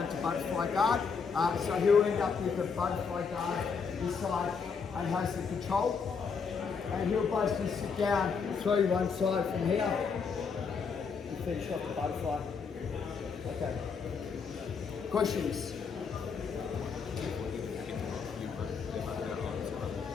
to butterfly guard. So he'll end up with a butterfly guard this side and has the control. And he'll basically sit down, throw you one side from here and finish off the butterfly. Okay. Questions?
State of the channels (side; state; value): right; quieter; 5.6 dB